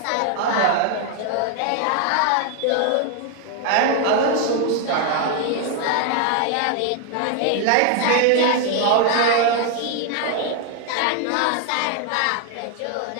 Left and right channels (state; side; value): different; both; correlation 0.00